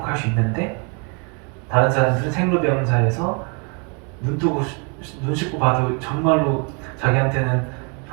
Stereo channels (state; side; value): quieter; left; 35.6 dB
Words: 수 있는데 다른 사람들은 생로병사에서 눈 씻고 봐도 정말로 자기한테는